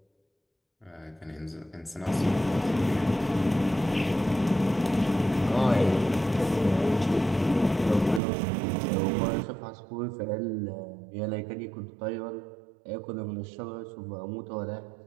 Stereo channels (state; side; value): drops out; left; at 8.2 s